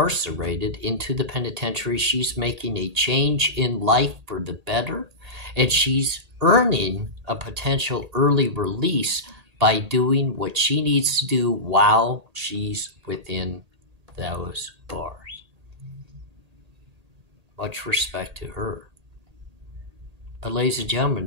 into the penitentiary, she's making a change in life for the better, and she's earning a potential early release by doing what she needs to do while she's within those bars. Much respect to her. But ladies and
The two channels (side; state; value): left; late; 1.8 ms